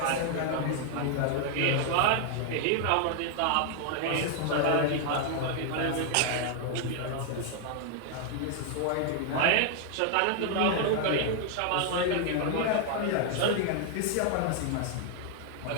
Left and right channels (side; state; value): both; different; correlation 0.00